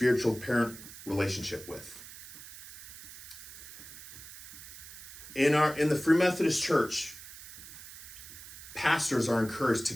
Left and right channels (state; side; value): noise; right; hiss, 14 dB below the sound